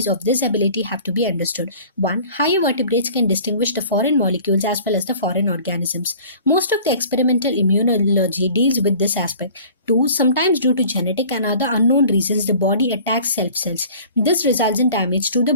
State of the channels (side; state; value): both; inverted; correlation -0.47